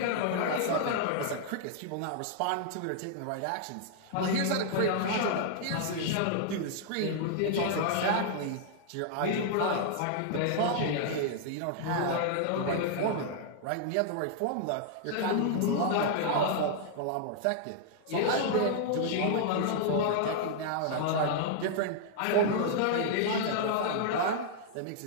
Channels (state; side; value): different; both; correlation -0.01